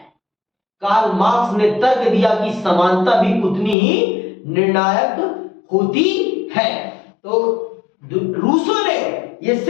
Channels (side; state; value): right; drops out; at 3.8 s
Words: कार्ल मार्क्स ने तर्क दिया कि समानता भी उतनी ही निर्णायक होती है। तो रूसो ने यह